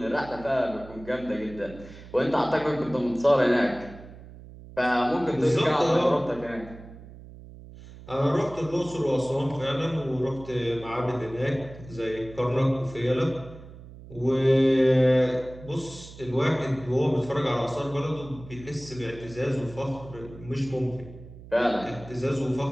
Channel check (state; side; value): noise; right; hum, 17 dB below the sound